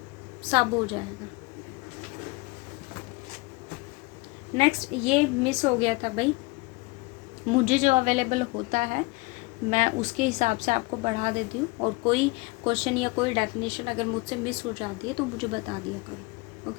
सब हो जाएगा। नेक्स्ट ये मिस हो गया था भाई, मुझे जो अवेलेबल होता है मैं उसके हिसाब से आपको बढ़ा देती हूँ, और कोई क्वेश्चन या कोई डेफिनेशन अगर मुझसे मिस हो जाती है तो मुझे बता दिया करो।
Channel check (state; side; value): quieter; right; 25.3 dB